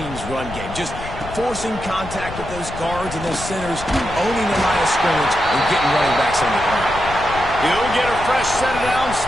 run game. Just forcing contact with those guards and those centers, owning the line of scrimmage, and getting running backs on the ground. He'll get a fresh set down,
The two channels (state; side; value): noise; left; rumble, 11 dB below the sound